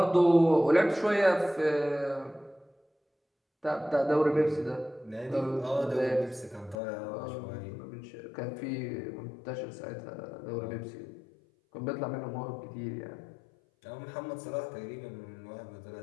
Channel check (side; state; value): right; drops out; at 6.8 s